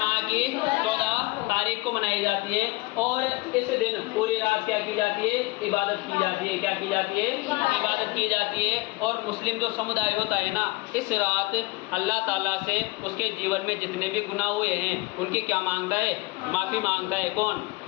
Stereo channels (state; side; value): quieter; right; 23.1 dB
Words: की 14 तारीख को मनाई जाती है। और इस दिन पूरी रात क्या की जाती है? इबादत की जाती है। क्या की जाती है? इबादत की जाती है। और मुस्लिम जो समुदाय होता है ना, इस रात अल्लाह ताला से उसके जीवन में जितने भी गुनाह हुए हैं उनकी क्या मांगता है? माफ़ी मांगता है। कौन?